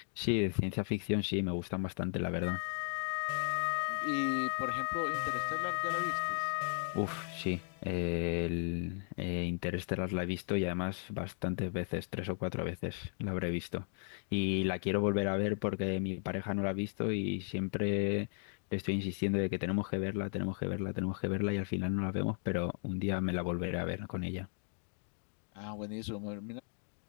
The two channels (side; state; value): right; silent; 54 dB below the other